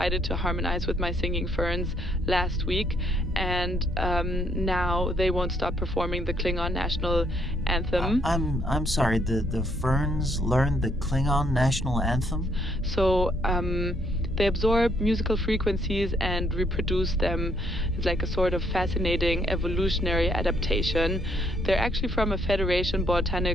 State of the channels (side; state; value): both; normal; correlation 0.70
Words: to harmonize with my singing ferns last week, and now they won't stop performing the Klingon national anthem. I'm sorry, the ferns learned the Klingon national anthem? So, they absorb musical frequencies and reproduce them. It's like a sort of fascinating evolutionary adaptation. They're actually from a Federation